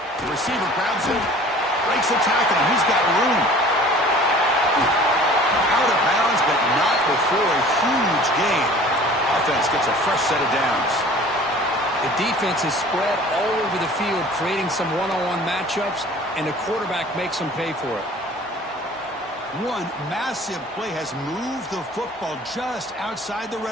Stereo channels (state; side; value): normal; both; correlation 0.47